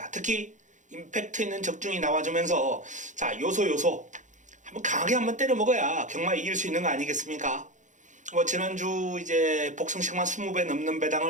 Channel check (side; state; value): left; late; 0.36 ms